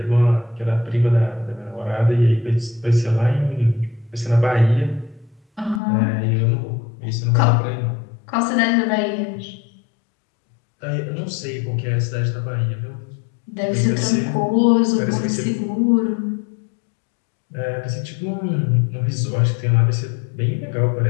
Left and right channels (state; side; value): drops out; right; at 5.8 s